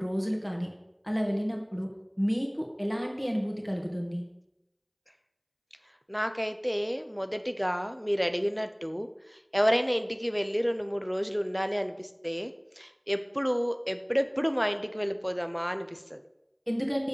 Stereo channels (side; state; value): both; identical; correlation 1.00